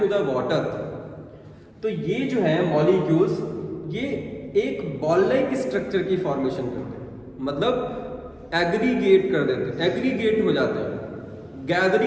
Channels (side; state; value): both; identical; correlation 1.00